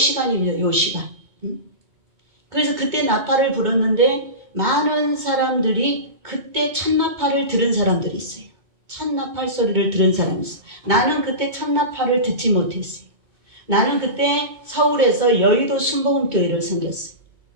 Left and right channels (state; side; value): late; left; 2.2 ms